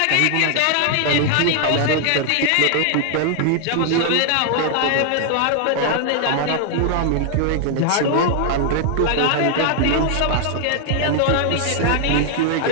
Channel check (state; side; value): different; both; correlation 0.00